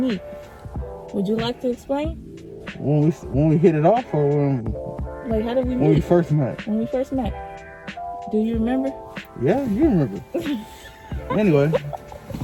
Would you like to explain? When we hit it off, or like, how did we meet? When we first met. When we first met. Do you remember? Yeah, you remember. Anyway.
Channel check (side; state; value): both; identical; correlation 1.00